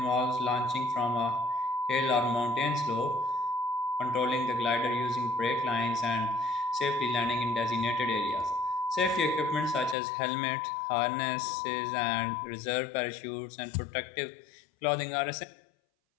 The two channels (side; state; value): right; drops out; at 10.0 s